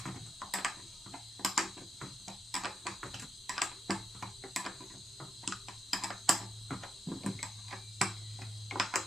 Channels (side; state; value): both; normal; correlation 0.83